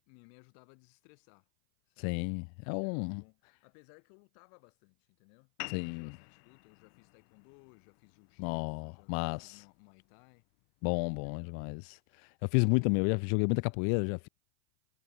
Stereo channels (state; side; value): silent; right; 54 dB below the other